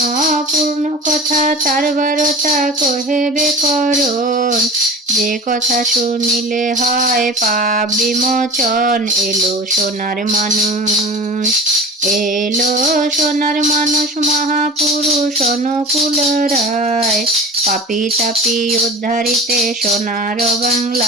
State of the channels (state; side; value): normal; both; correlation 0.36